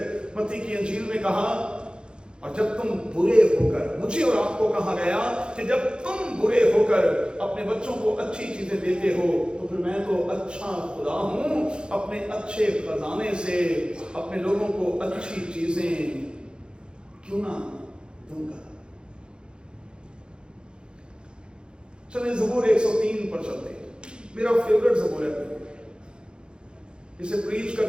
मत्ती की इंजील में कहा, और जब तुम बुरे होकर, मुझे और आपको कहा गया कि जब तुम बुरे होकर अपने बच्चों को अच्छी चीजें देते हो, तो फिर मैं तो अच्छा खुदा हूं, अपने अच्छे खजाने से अपने लोगों को अच्छी चीजें क्यों ना दूंगा। चलिए ज़बूर 103 पर चलते हैं। मेरा फेवरेट ज़बूर है। इसे प्रीच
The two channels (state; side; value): late; left; 0.051 ms